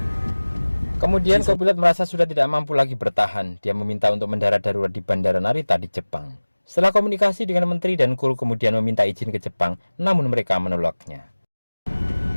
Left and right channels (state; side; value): inverted; both; correlation -1.00